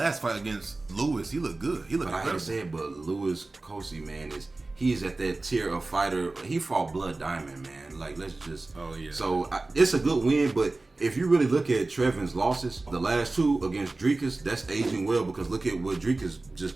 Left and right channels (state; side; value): quieter; left; 3.2 dB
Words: fight against Lewis, he looked good. He looked. But I hate to say it, but Lewis Kosi, man, he's at that tier of fighter. He fought Blood Diamond, man. Like, let's just. Oh yeah. So it's a good win, but if you really look at Trevin's losses, the last 2 against Dricus, that's aging well because look at what Dricus